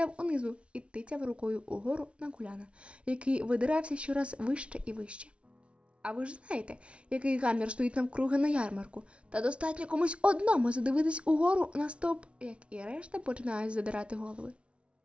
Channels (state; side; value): late; left; 0.060 ms